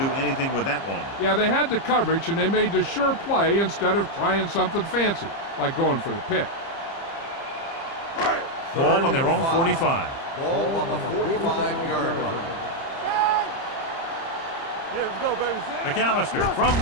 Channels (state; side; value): late; right; 30 ms